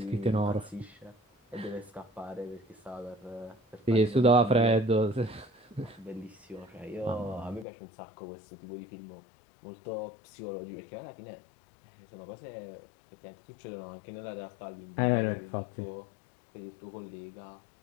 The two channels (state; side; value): drops out; right; at 7.7 s